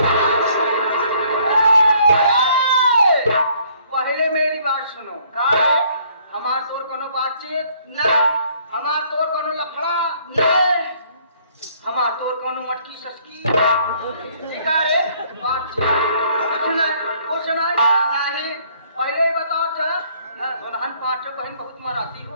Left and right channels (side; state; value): both; inverted; correlation -0.62